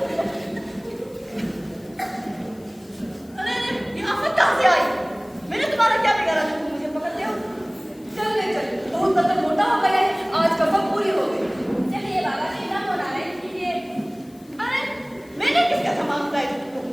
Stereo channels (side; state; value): left; noise; hiss, 27 dB below the sound